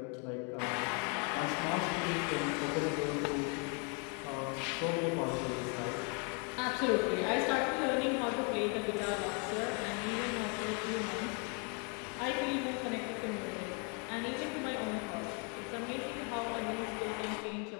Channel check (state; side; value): quieter; right; 36.3 dB